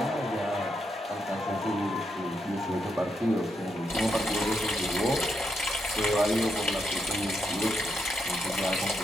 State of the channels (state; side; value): normal; both; correlation 0.81